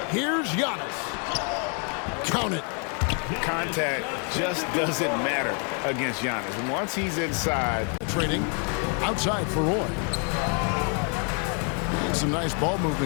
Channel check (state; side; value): quieter; right; 39.7 dB